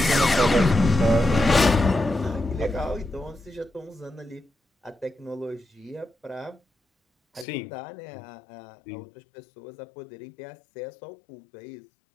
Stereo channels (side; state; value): right; drops out; at 7.5 s